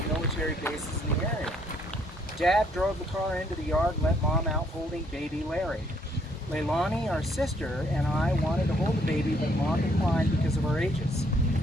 military bases in the area. Dad drove the car into the yard and let Mom out holding baby Larry. Leilani, our sister, and I wanted to hold the baby, but Mom declined because of our ages.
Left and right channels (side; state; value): both; normal; correlation 0.68